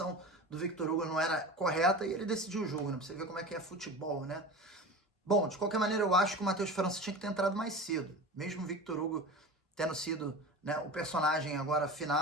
do Victor Hugo não era correta e ele decidiu o jogo, né? Pra você ver como é que é futebol, né? Bom, de qualquer maneira, eu acho que o Matheus França tinha que ter entrado mais cedo. Mesmo o Victor Hugo tendo sido, né, o personagem agora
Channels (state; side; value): normal; both; correlation 0.32